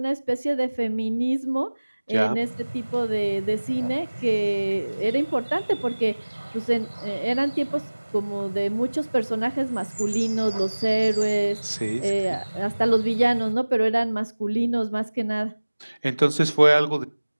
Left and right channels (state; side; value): inverted; both; correlation -1.00